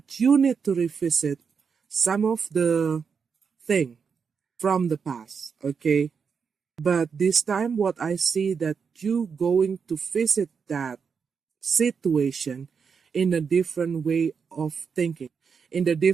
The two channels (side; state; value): left; quieter; 6.1 dB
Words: you need to revisit some of the thing from the past, okay? But this time what I see that you going to visit that situation in a different way of thinking, in a